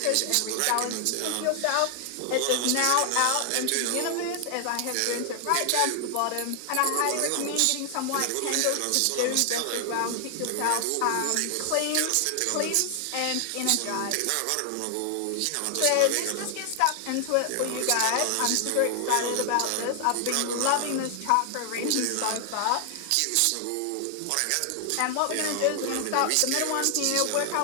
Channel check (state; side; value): different; both; correlation 0.00